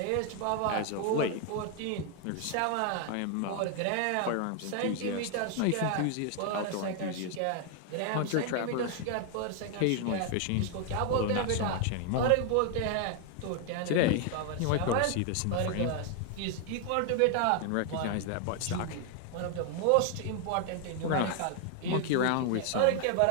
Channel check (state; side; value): different; both; correlation 0.00